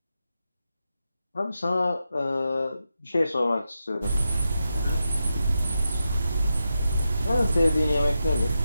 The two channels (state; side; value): inverted; both; correlation -0.88